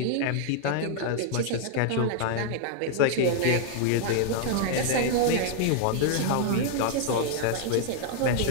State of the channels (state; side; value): different; both; correlation 0.00